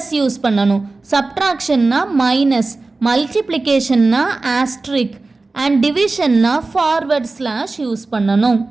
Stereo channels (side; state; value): left; quieter; 3.5 dB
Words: யூஸ் பண்ணணும், சப்ட்ராக்ஷன்னா மைனஸ், மல்டிப்ளிகேஷன்னா ஆஸ்ட்ரிக், அண்ட் டிவிஷன்னா ஃபார்வர்ட் ஸ்லாஷ் யூஸ் பண்ணணும்.